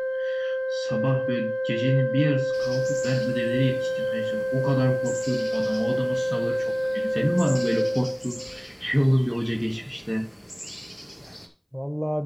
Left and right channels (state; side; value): identical; both; correlation 1.00